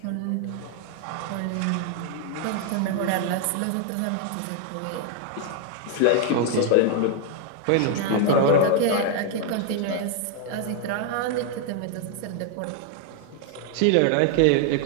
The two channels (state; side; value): different; both; correlation 0.00